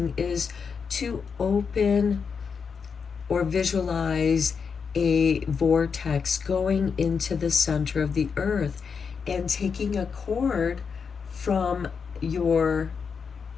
is to open or visualize a vortex going into the center of the earth and taking a cord from your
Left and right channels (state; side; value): quieter; right; 5.9 dB